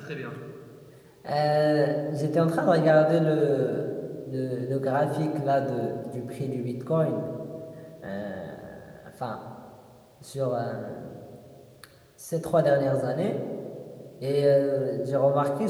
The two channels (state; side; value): identical; both; correlation 1.00